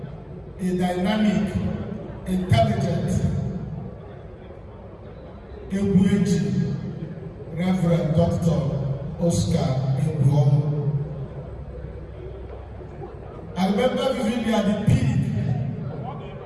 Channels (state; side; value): identical; both; correlation 1.00